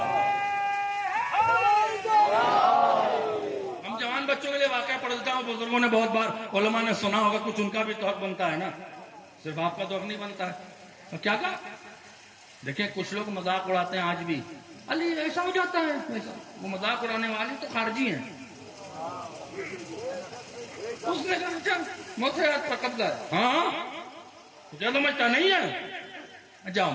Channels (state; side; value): identical; both; correlation 1.00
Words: ہم جوان بچوں کے لیے واقعہ پڑھ دیتا ہوں. بزرگوں نے بہت بار، علماء نے سنا ہوگا، کچھ ان کا بھی تو حق بنتا ہے نا، صرف آپ کا تو حق نہیں بنتا ہے. اور کیا کہا؟ دیکھیں کچھ لوگ مذاق اڑاتے ہیں آج بھی، علی ایسا ہو جاتا ہے ایسا. وہ مذاق اڑانے والے تو خارجی ہیں. اس نے کہا اچھا موت پر قبضہ ہے. ہاں تجھے سمجھتا نہیں ہے، جاؤ